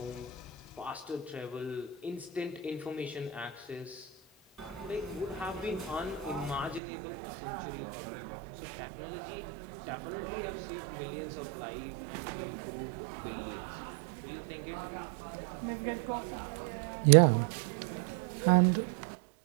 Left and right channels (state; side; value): drops out; left; at 6.8 s